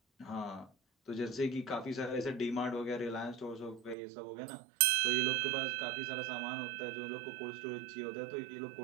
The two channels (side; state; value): left; drops out; at 4.0 s